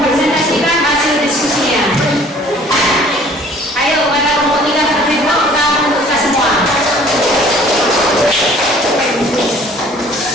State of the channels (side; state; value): both; normal; correlation 0.53